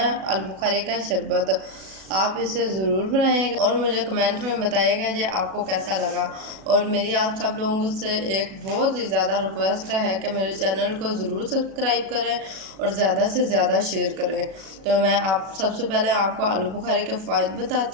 आलूबुखारे का शरबत। आप इसे ज़रूर बनाइएगा और मुझे कमेंट में बताइएगा कि आपको कैसा लगा। और मेरी आप सब लोगों से एक बहुत ही ज़्यादा रिक्वेस्ट है कि मेरे चैनल को ज़रूर सब्सक्राइब करें और ज़्यादा से ज़्यादा शेयर करें। तो मैं आप सबसे पहले आपको आलूबुखारे के फ़ायदे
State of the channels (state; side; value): late; left; 37 ms